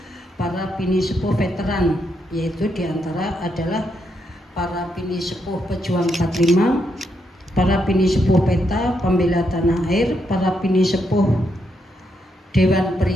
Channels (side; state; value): both; normal; correlation 0.79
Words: para bini sepuh veteran, yaitu diantara adalah para bini sepuh pejuang 45, para bini sepuh PETA, pembela tanah air, para bini sepuh Dewan